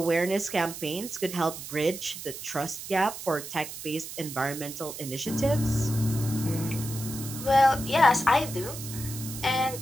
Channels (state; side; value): noise; right; hiss, 10 dB below the sound